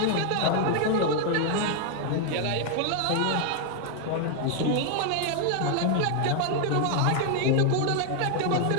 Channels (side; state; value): both; different; correlation 0.00